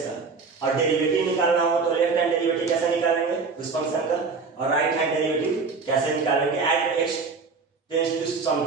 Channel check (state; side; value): quieter; left; 4.6 dB